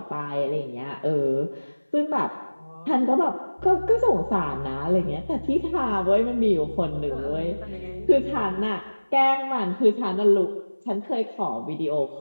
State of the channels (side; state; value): both; inverted; correlation -1.00